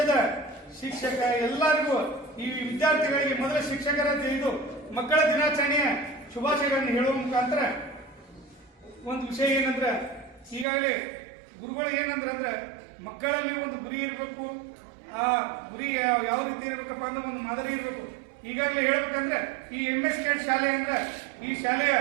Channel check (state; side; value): drops out; left; at 10.7 s